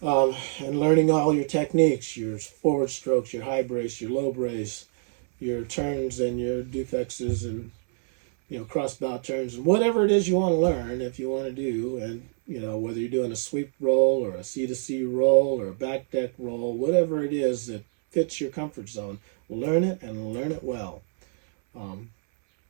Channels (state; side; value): silent; left; 61 dB below the other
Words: And learning all your techniques, your forward strokes, your high brace, your low brace, your turns and your defexes, and cross bow turns, and whatever it is you want to learn, if you want to do, and whether you're doing a sweep roll or a C-to-C roll or a back deck roll, whatever it is that fits your comfort zone, learn it and learn it well.